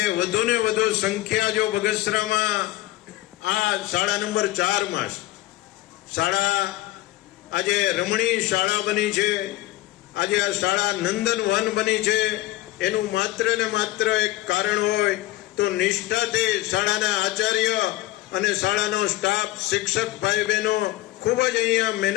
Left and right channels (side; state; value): right; quieter; 16.8 dB